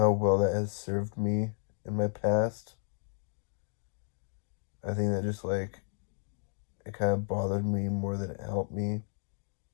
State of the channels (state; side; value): silent; right; 56 dB below the other